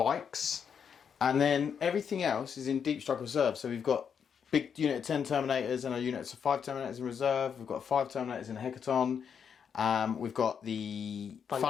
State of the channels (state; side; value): quieter; right; 7.2 dB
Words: And then everything else is in Deep Strike Reserve. So we've got big unit of 10 Terminators and a unit of 5 Terminators in reserve. We've got 5 Terminators in Hecaton. We've got the